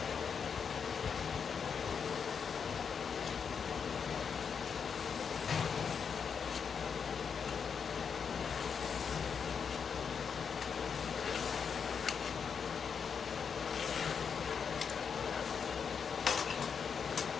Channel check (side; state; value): right; quieter; 6.5 dB